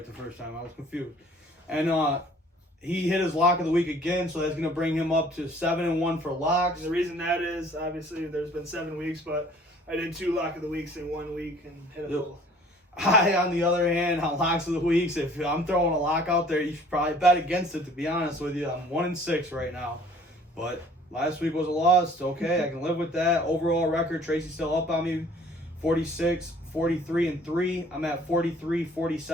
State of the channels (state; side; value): normal; both; correlation 0.54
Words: the first time. I was confused. And he hit his lock of the week again, so that's gonna bring him up to 7-1 for locks. And the reason that is obviously there's been 7 weeks, but I did 2 lock of the weeks in 1 week and hit them both. I, on the other hand, on locks of the weeks, if I'm throwing a lock out there, you should probably bet against it, to be honest with you. I'm 1-6 right now. But last week was a loss. Okay, I can live with that. Overall record, Tracy's still up on me. 46, 43-3. I'm at 43,